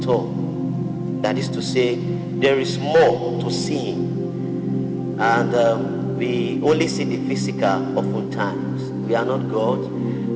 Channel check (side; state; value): both; identical; correlation 1.00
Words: all. That is to say, there is more to seeing, and we only see the physical oftentimes. We are not God,